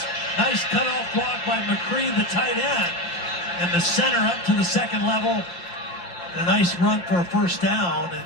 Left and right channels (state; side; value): late; right; 6.0 ms